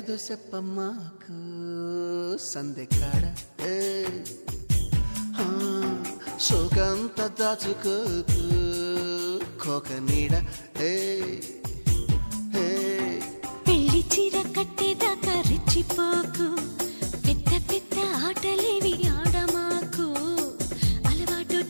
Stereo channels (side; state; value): both; inverted; correlation -1.00